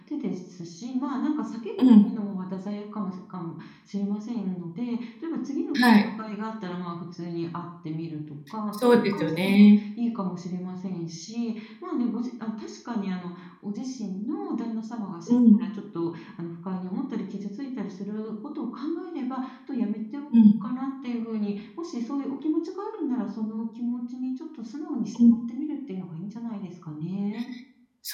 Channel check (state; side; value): identical; both; correlation 1.00